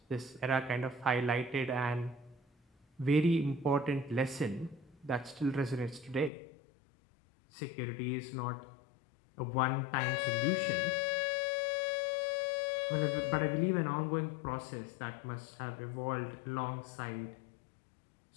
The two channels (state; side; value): drops out; right; at 6.3 s